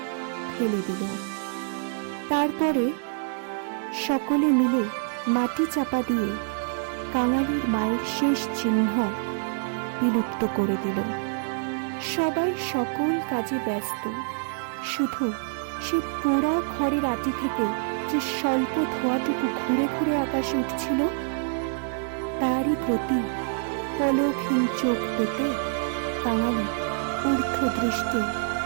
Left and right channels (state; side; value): silent; left; digital silence